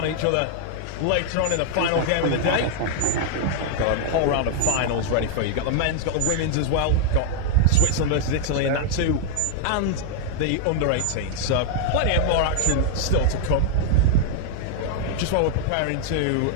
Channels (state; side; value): different; both; correlation 0.00